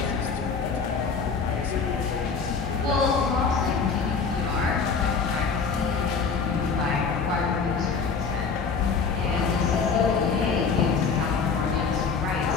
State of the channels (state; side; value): quieter; right; 5.3 dB